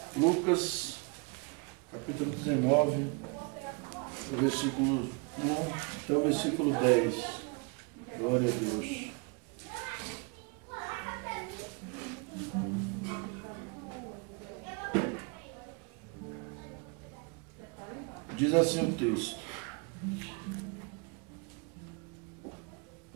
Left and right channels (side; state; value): left; quieter; 32.3 dB